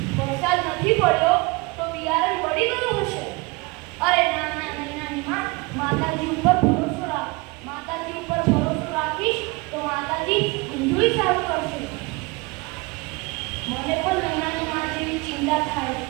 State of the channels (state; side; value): quieter; left; 25.6 dB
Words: વરસાદ નથી પડ્યો તો બિયારણ બળી ગયું હશે. અરે ના ના મહિનાનીમાં, માતાજી ઉપર ભરોસો રાખ. માતાજી ઉપર ભરોસો રાખીશ તો માતાજી બધુંય સારું કરશે. મને પણ મહિનાની માં જેવી ચિંતા થાય,